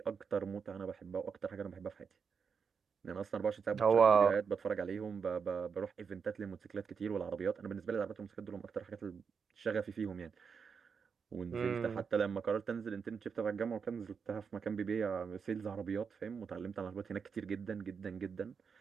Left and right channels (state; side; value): quieter; left; 6.1 dB